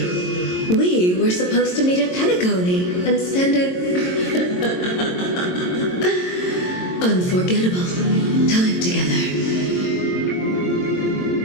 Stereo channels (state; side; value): late; right; 22 ms